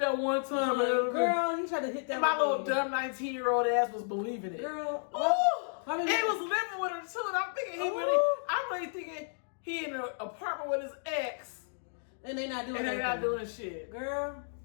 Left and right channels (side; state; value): right; silent; digital silence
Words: that one time. Girl, he tried to hit that. And my little dumb 19-year-old ass was believing it. Girl, and he was living with her too. And I'm thinking I'm really thinking he in an apartment with his ex, and they not doing. And they not doing shit. Girl,